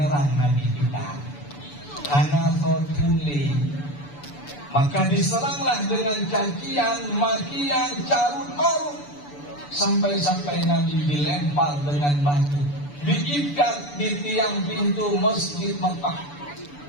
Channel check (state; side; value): late; right; 6.9 ms